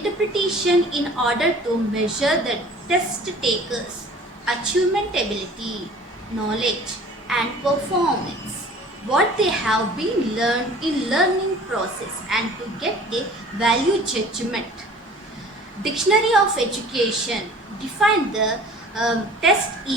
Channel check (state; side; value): normal; both; correlation 0.47